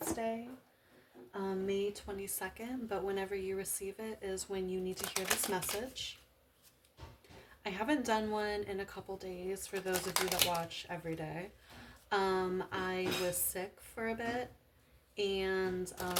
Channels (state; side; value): identical; both; correlation 1.00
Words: May 22nd, but whenever you receive it is when you need to hear this message. I haven't done one in a couple days for those of you that watch every day. I was sick for a bit and